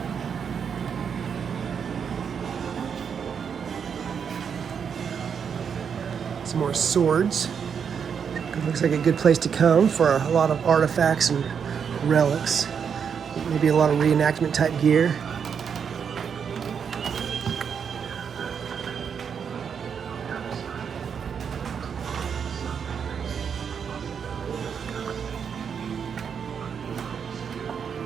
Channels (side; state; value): left; quieter; 7.0 dB